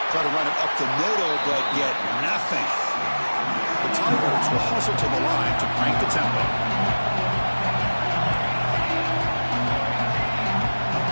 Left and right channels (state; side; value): inverted; both; correlation -1.00